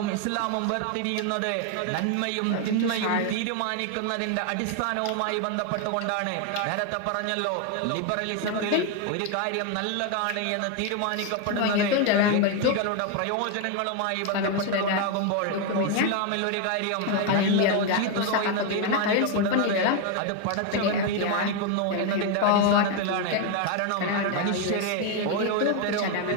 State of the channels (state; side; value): different; both; correlation 0.01